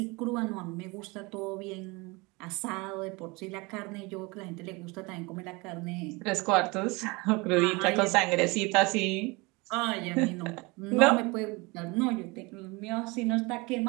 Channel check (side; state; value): left; quieter; 25.8 dB